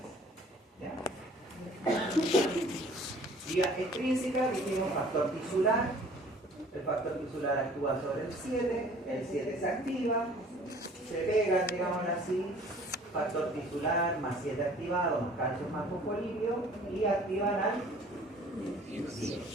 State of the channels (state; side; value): normal; both; correlation 0.52